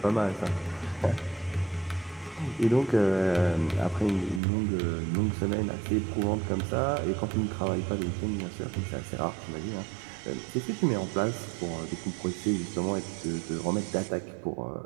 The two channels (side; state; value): left; drops out; at 4.4 s